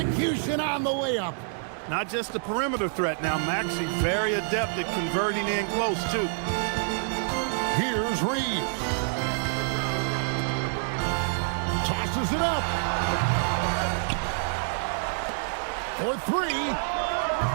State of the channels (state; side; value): silent; left; digital silence